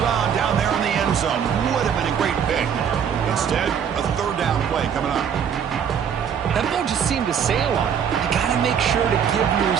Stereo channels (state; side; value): quieter; left; 7.9 dB